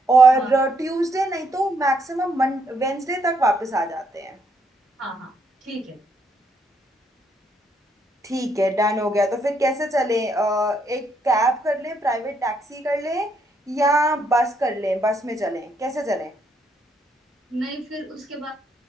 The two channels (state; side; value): normal; both; correlation 0.74